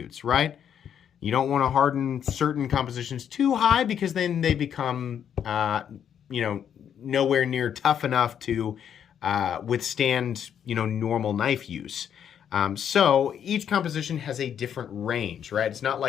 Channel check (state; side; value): quieter; right; 8.8 dB